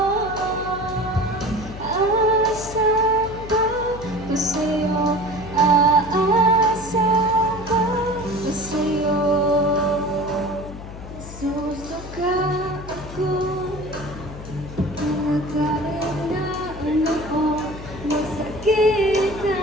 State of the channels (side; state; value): left; noise; hum, 13 dB below the sound